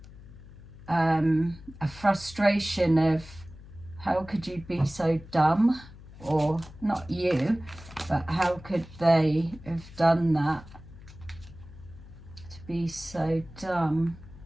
a frustration of, how could you be so dumb? Or not you, but how could they have done that? To be so dumb.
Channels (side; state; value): left; noise; hum, 18 dB below the sound